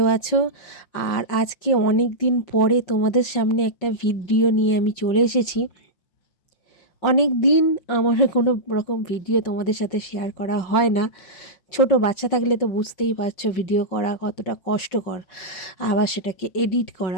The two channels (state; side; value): late; right; 5.6 ms